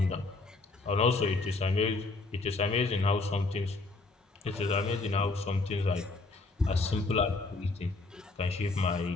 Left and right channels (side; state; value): right; quieter; 3.4 dB